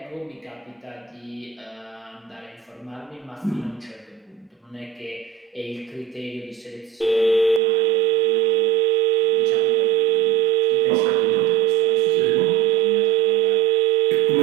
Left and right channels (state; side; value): drops out; left; at 7.6 s